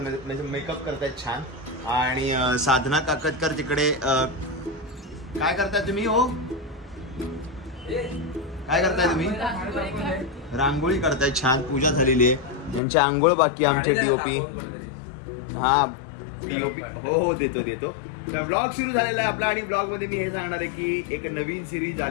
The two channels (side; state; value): right; drops out; at 12.8 s